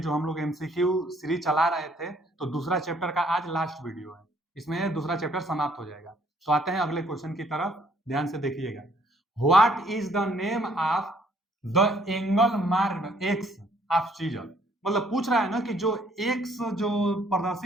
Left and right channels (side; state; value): both; normal; correlation 0.64